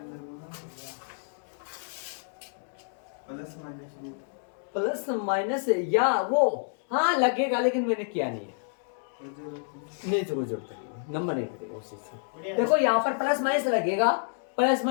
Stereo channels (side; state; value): right; silent; digital silence